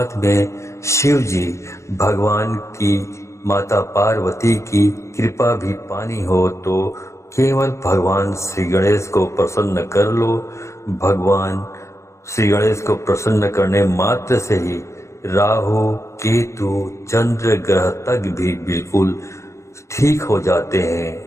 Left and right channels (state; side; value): late; right; 0.14 ms